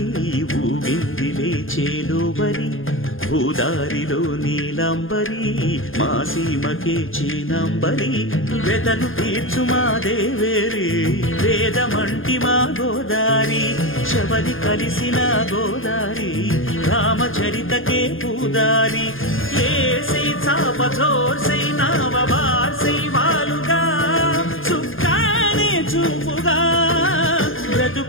ఊగిందిలే చేలోవరి భూదారిలో నీలాంబరి మా సీమకే చీనాంబరి వెతలు తీర్చు మా దేవేరి వేదమంటి మా గోదారి శబరి కలిసిన గోదారి రామచరితకే పూదారి ఏసై చాప జోర్సై నావ బార్సై వాలుగా చుక్కానే చూపుగా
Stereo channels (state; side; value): late; right; 0.59 ms